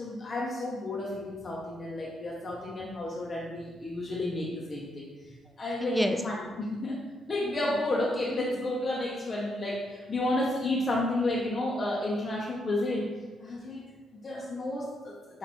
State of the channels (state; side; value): normal; both; correlation 0.79